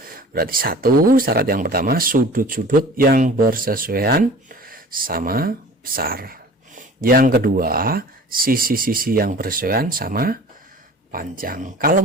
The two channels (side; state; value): both; normal; correlation 0.43